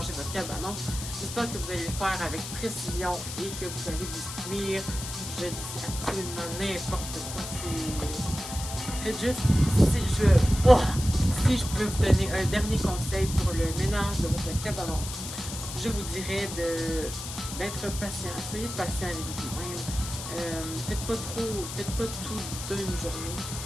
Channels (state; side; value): noise; left; hiss, 8 dB below the sound